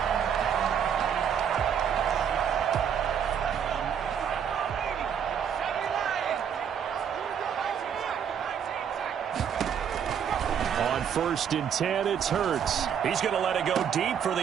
First and 10, it's Hurts. He's going to let it go deep for the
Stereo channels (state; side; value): quieter; left; 8.1 dB